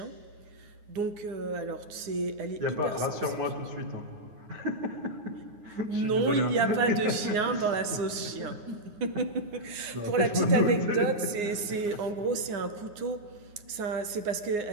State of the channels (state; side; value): late; left; 9.6 ms